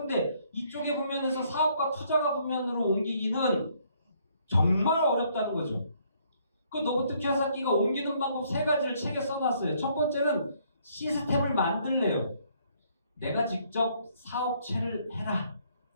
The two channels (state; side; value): inverted; both; correlation -0.67